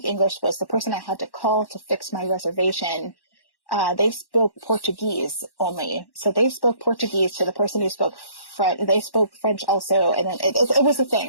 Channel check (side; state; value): right; late; 1.1 ms